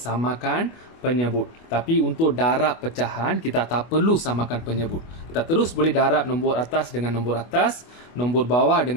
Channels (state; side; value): late; right; 25 ms